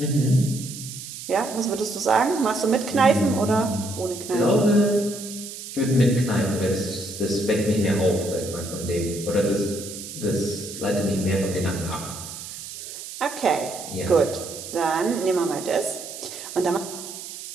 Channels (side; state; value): right; noise; hiss, 11 dB below the sound